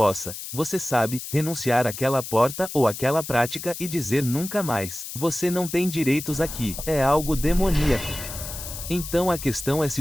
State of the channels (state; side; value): noise; left; hiss, 9 dB below the sound